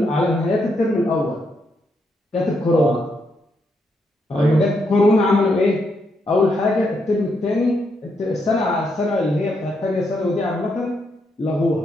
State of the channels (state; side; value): normal; both; correlation 0.79